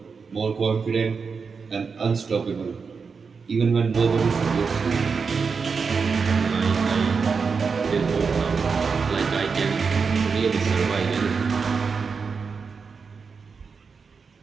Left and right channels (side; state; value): left; quieter; 5.3 dB